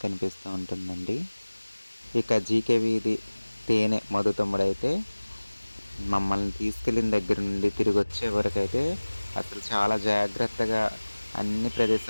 కనిపిస్తూ ఉంటుందండి. ఇక జీకే వీధి తేనె మధు తమ్ముడైతే మమ్మల్ని తీసుకెళ్ళిన దగ్గర నుండి తిరిగి వచ్చే వరకు అయితే అసలు చాలా జాగ్రత్తగా అన్ని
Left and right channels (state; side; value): inverted; both; correlation -1.00